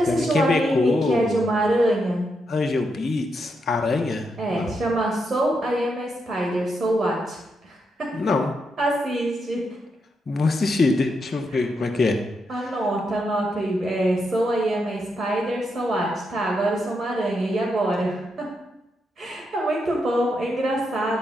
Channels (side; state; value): both; normal; correlation 0.82